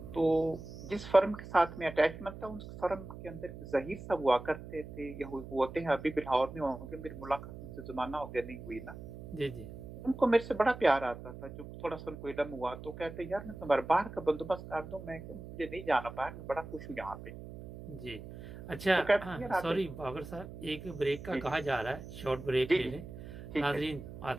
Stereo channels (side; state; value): right; noise; hum, 12 dB below the sound